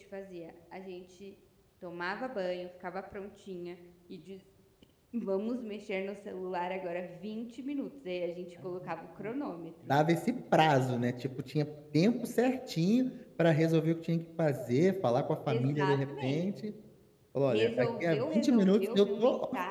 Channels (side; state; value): both; identical; correlation 1.00